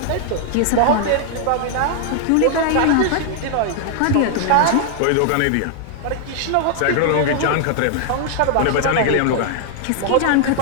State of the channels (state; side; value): different; both; correlation 0.00